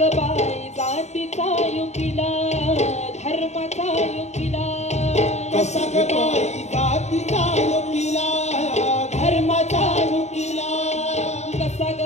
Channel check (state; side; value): late; right; 0.32 ms